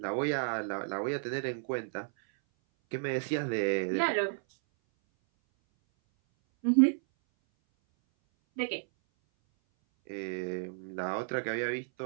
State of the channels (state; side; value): silent; left; 56 dB below the other